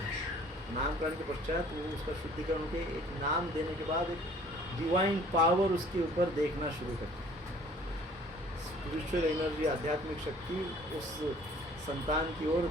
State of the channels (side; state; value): both; normal; correlation 0.53